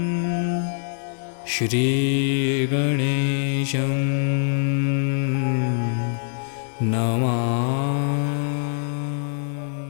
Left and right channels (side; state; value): right; silent; digital silence